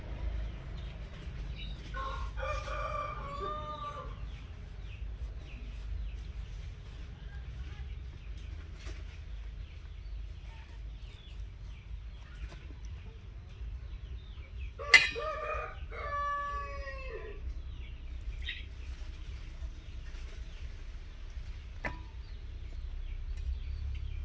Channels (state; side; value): identical; both; correlation 1.00